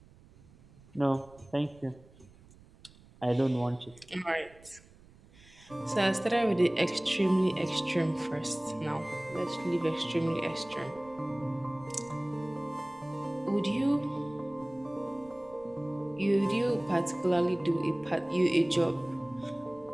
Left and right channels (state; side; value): noise; right; rumble, 25 dB below the sound